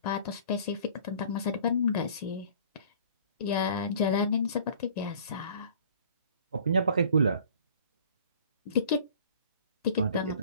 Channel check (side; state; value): both; inverted; correlation -0.49